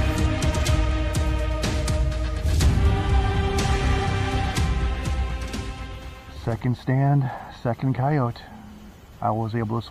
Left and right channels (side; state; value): both; identical; correlation 1.00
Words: Second stand, second coyote. I was able to